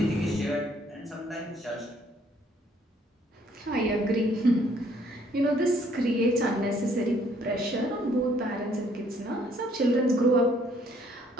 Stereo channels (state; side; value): normal; both; correlation 0.64